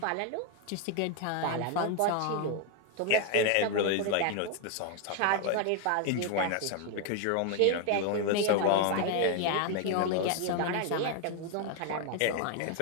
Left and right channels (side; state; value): both; different; correlation 0.01